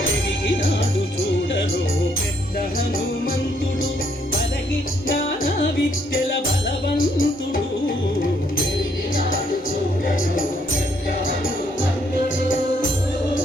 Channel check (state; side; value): normal; both; correlation 0.70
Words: చూడరు పెద్ద హనుమంతుడు పలగి నానా విద్యల బలవంతుడు పెరిగినాడు చూడరు పెద్ద హనుమంతుడు